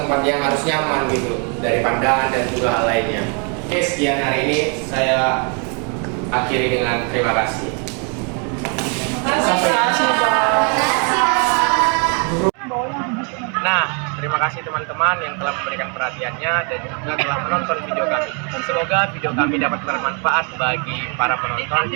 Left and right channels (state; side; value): quieter; left; 37.3 dB